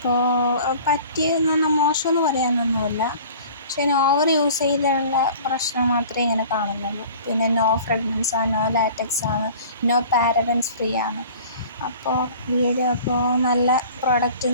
പറ്റിയെന്ന് പറഞ്ഞാൽ മോശമെന്ന് പറയാനൊന്നുമില്ല. പക്ഷേ ഓവർ യൂസ് ചെയ്തുള്ള പ്രശ്നം മാത്രമേ ഇങ്ങനെ കാണുന്നുള്ളൂ. പിന്നെ നോ ഫ്രാഗ്രൻസാണ്, നോ ലാറ്റക്സാണ്, നോ പാരബൻസ് ഫ്രീ ആണ്. അപ്പോൾ നല്ല പ്രൊഡക്റ്റ്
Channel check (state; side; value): inverted; both; correlation -0.45